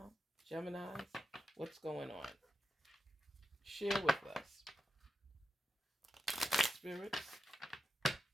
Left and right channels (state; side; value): normal; both; correlation 0.89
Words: Geminis? What's going on? Share with us. Spirits,